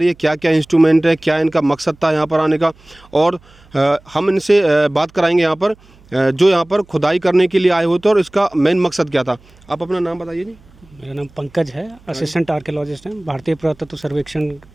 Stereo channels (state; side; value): noise; right; hum, 28 dB below the sound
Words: है। क्या क्या इंस्ट्रूमेंट है, क्या इनका मकसद था यहाँ पर आने का, और हम इनसे बात कराएंगे यहाँ पर जो यहाँ पर खुदाई करने के लिए आए होते और इसका मेन मकसद क्या था। आप अपना नाम बताइए जी। मेरा नाम पंकज है, असिस्टेंट आर्कियोलॉजिस्ट हैं। भारतीय पुरातत्व सर्वेक्षण